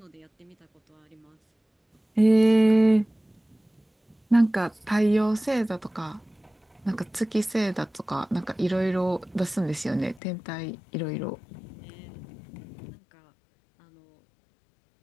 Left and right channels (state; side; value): drops out; right; at 10.2 s